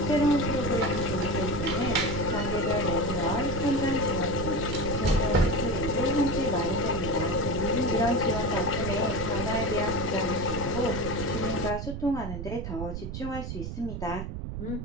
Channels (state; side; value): noise; right; rumble, 5 dB below the sound